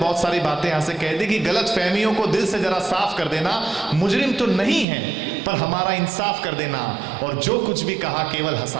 सारी बातें यहाँ से कह दी कि गलत फहमियों को दिल से जरा साफ कर देना। मुजरिम तो नहीं है पर हमारा इंसाफ कर देना, और जो कुछ भी कहा केवल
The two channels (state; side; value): drops out; left; at 4.9 s